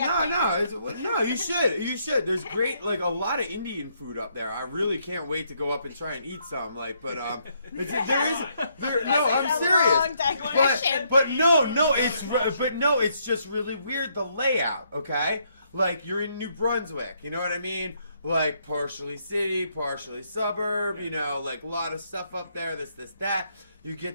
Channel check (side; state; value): both; inverted; correlation -0.73